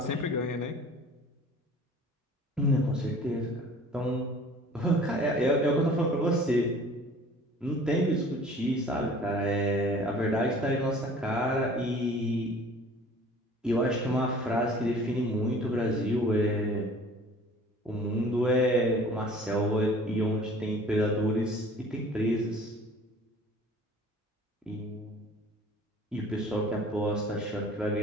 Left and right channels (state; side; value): normal; both; correlation 0.48